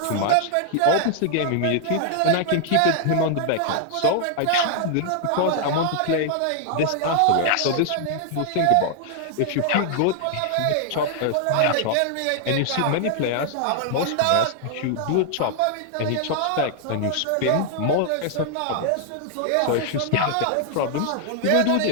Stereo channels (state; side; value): different; both; correlation 0.00